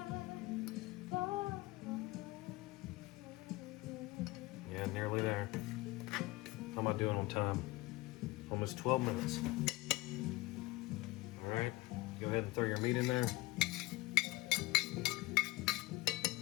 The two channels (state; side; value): quieter; right; 20.5 dB